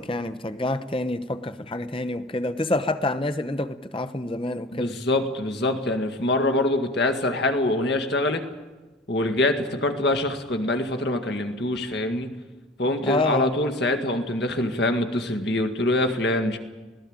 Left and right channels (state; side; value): normal; both; correlation 0.41